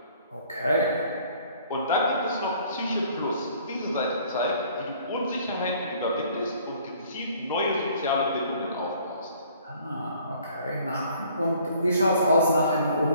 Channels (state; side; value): inverted; both; correlation -0.57